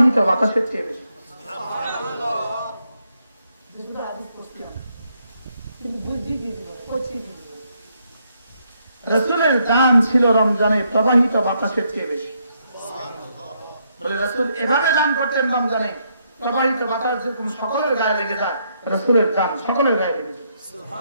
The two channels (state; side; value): inverted; both; correlation -0.76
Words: বাতাসের চেয়ে বেশি। রাসূলের দান ছিল রমজানে প্রবাহিত বাতাসের চেয়ে বেশি। বলে রাসূল এভাবে দান করতেন রমজানে, প্রবাহিত বাতাস যেরকম সকলের গায়ে লেগে যায়, রাসূলের দান সকলের গায়ে লেগে যায়।